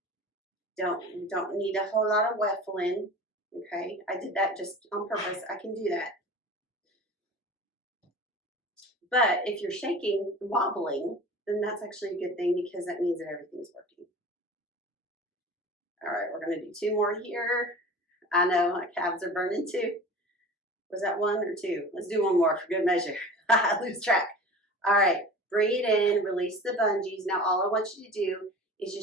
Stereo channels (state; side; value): normal; both; correlation 0.38